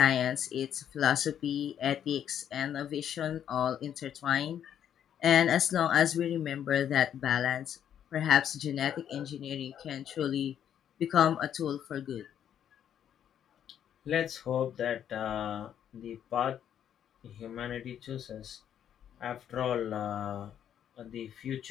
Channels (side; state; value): right; quieter; 9.6 dB